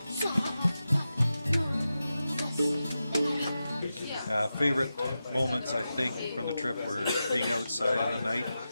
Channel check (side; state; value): both; inverted; correlation -0.91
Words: Favorite moments, I think, from the trip were being outside in the night,